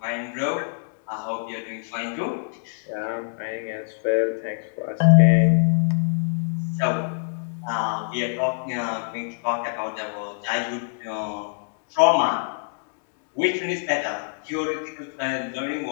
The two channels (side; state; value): right; silent; digital silence